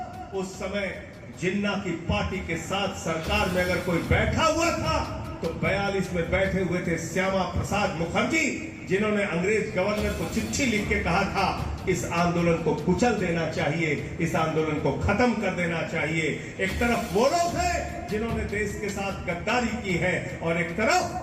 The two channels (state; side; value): identical; both; correlation 1.00